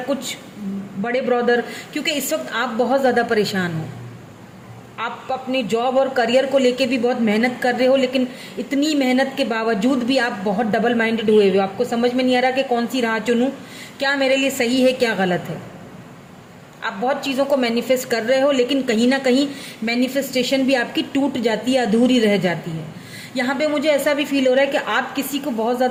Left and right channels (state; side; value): identical; both; correlation 1.00